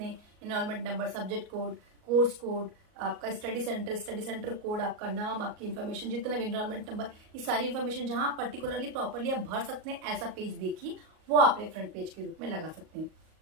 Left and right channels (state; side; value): late; left; 38 ms